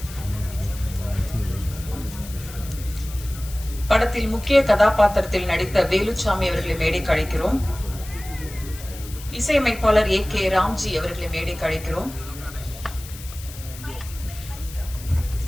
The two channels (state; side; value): noise; left; hiss, 15 dB below the sound